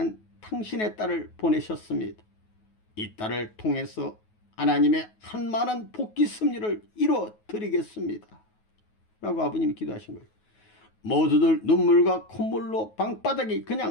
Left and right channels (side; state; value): right; late; 9.3 ms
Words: 당신의 딸을 보내셨습니다. 이 딸을 통해서 하나님의 한 많은 복귀 섭리를 이루어드리겠습니다. 라고 아버님이 기도하신 거예요. 모두들 눈물과 콧물로 방바닥이